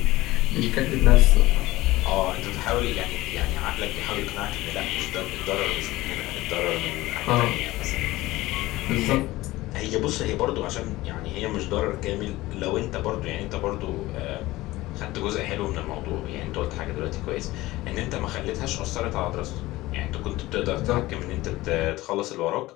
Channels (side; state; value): right; quieter; 18.4 dB